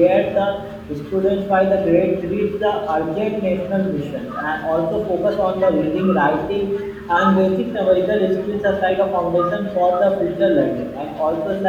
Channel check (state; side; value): identical; both; correlation 1.00